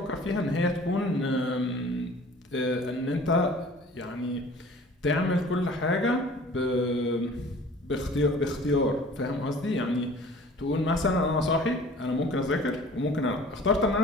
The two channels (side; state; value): both; normal; correlation 0.47